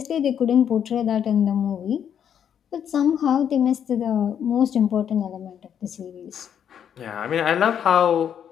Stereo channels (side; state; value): right; quieter; 8.7 dB